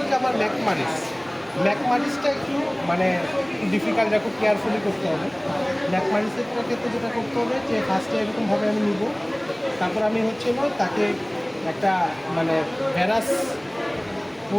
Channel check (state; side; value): noise; right; hum, 29 dB below the sound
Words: যে আমার ম্যাকমারিসটা একটু মানে ডিফিকাল্ট, খুব কেয়ারফুলি করতে হবে। ম্যাকমারিসের ক্ষেত্রে যেটা করতে হবে যে ফার্স্টে এরকমভাবে আমি নিব, তারপর আমি হচ্ছে হলো তাকে একটা মানে ভ্যারাস